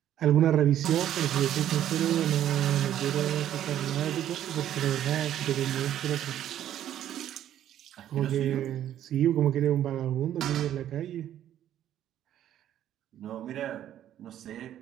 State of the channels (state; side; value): quieter; left; 11.3 dB